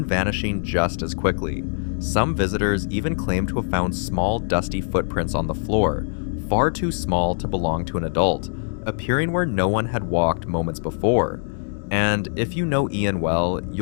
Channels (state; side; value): silent; right; digital silence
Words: vanishing just as quickly. Some visitors even claim to have found small, dusty footprints on the floor, far too small to belong to an adult, appearing where no one had walked moments before. And if you know Ian well,